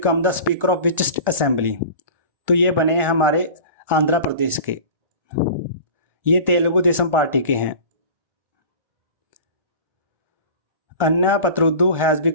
the speaker of which assembly? तो ये बने हैं हमारे आंध्र प्रदेश के. ये Telugu Desam party के हैं. Anna Patrudu has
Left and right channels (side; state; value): left; late; 1.4 ms